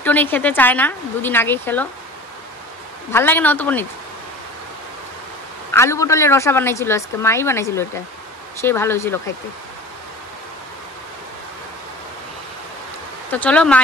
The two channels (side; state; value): both; normal; correlation 0.39